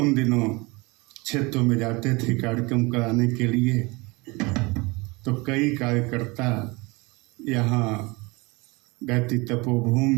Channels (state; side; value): quieter; left; 25.5 dB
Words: दिनों क्षेत्रों में जाते थे कार्यक्रम कराने के लिए, तो कई कार्यकर्ता यहाँ गायत्री तपोभूमि